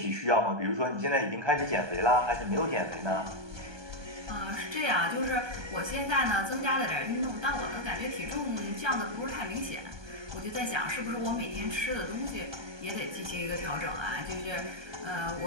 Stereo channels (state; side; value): late; left; 1.2 ms